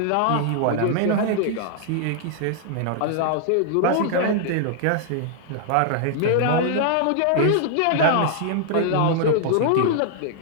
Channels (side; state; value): both; different; correlation -0.01